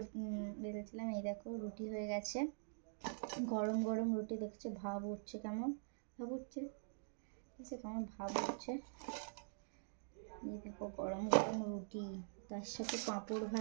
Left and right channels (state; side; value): silent; left; digital silence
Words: বেলছিলাম। এই দেখো রুটি হয়ে গেছে, গরম গরম রুটি। দেখছো ভাব উঠছে, কেমন ভাব উঠছে, কেমন ভাব উঠছে। এই দেখো গরম গরম রুটি, তার সাথে পাঁপড়